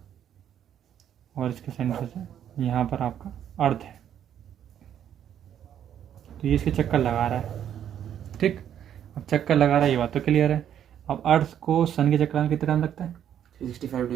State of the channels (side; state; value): left; quieter; 9.8 dB